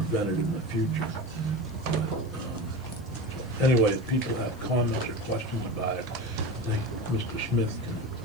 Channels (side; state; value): left; noise; hiss, 26 dB below the sound